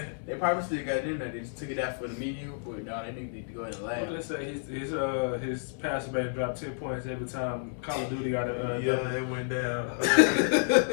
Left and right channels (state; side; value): silent; right; 56 dB below the other